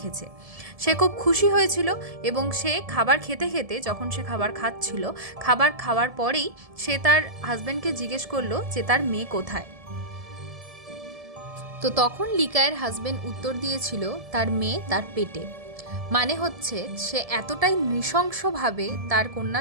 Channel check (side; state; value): left; late; 1.7 ms